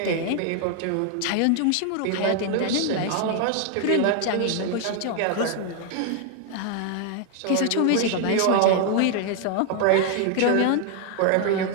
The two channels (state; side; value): different; both; correlation 0.00